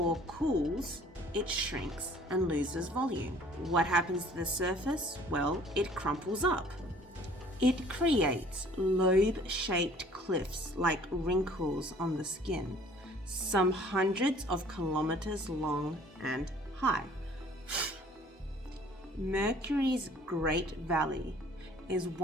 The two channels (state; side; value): normal; both; correlation 0.54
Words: cools, it shrinks and loses volume. What happens to the surface? Well, it crumples up. It creates lobe-shaped cliffs like wrinkles on the skin, some hundreds of kilometers long and high. Mercury's Great Valley is